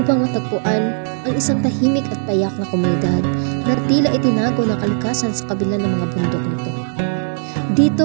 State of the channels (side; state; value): left; silent; digital silence